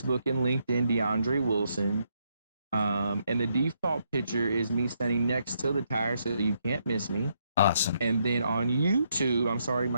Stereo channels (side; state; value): both; inverted; correlation -0.76